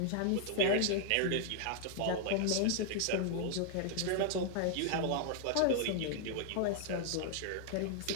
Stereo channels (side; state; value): both; different; correlation 0.00